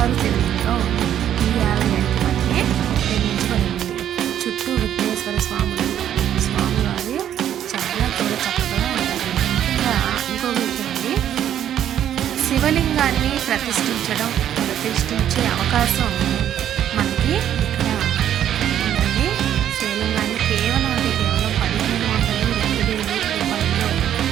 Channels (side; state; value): left; quieter; 10.5 dB